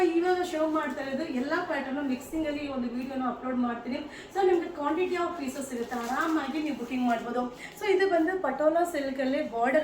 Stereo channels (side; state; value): both; identical; correlation 1.00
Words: ಇವಾಗ ಶೋ ಮಾಡ್ತಾ ಇರೋದು ಎಲ್ಲ ಪ್ಯಾಟರ್ನು ಮಿಕ್ಸಿಂಗಲ್ಲಿ ಒಂದು ವಿಡಿಯೋನ ಅಪ್ಲೋಡ್ ಮಾಡ್ತೀನಿ. ಸೊ ನಿಮಗೆ ಕ್ವಾಂಟಿಟಿ ಆಫ್ ಪೀಸಸ್ ಇರುತ್ತೆ, ಆರಾಮಾಗಿ ನೀವು ಬುಕಿಂಗ್ ಮಾಡ್ಬೋದು. ಸೊ ಇದು ಬಂದು ಪಟೋಲಾ ಸಿಲ್ಕಲ್ಲಿ